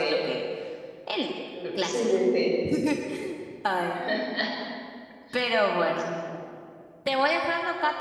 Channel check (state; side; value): identical; both; correlation 1.00